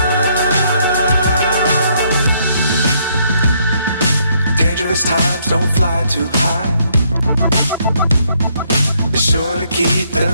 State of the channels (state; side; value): inverted; both; correlation -0.71